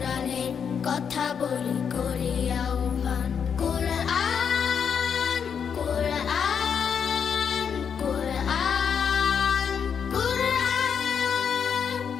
কথা বলি করি আহ্বান। কোরআন কোরআন কোরআন কোরআন,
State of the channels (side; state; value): right; quieter; 7.1 dB